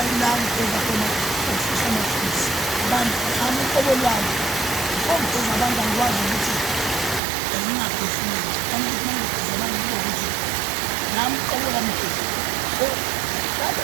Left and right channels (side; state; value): left; drops out; at 7.2 s